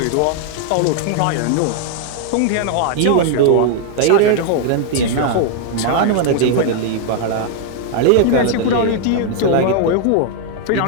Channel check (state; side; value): different; both; correlation 0.00